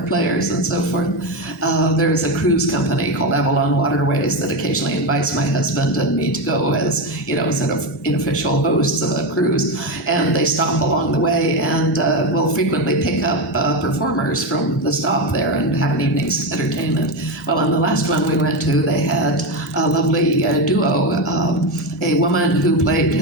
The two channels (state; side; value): normal; both; correlation 0.14